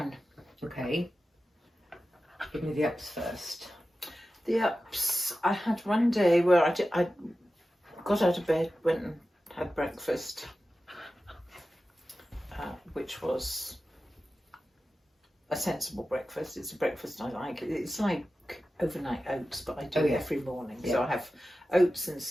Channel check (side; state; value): both; normal; correlation 0.93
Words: Okay. Give me the ups first. The ups. I had one day where I got out of bed, went and had breakfast, which was a sensible breakfast. It's a breakfast I like. It's like overnight oats, but I do it every morning. Yeah. So I have oats and